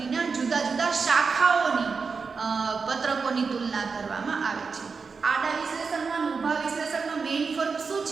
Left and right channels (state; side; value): quieter; left; 5.0 dB